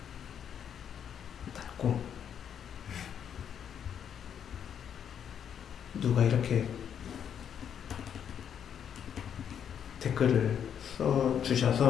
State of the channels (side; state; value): right; quieter; 8.5 dB